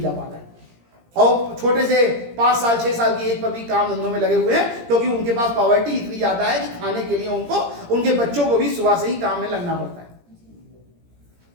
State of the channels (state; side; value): late; left; 17 ms